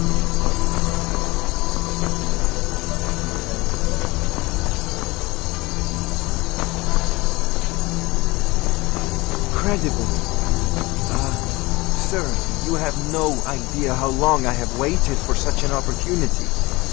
Sir, you have no idea how long I have waited for such an opportunity.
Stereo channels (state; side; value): quieter; right; 22.1 dB